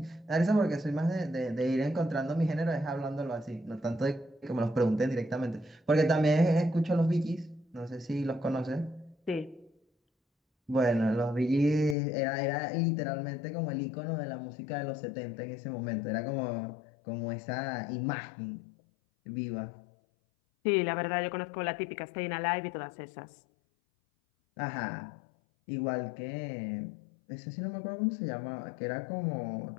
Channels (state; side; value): drops out; right; at 12.0 s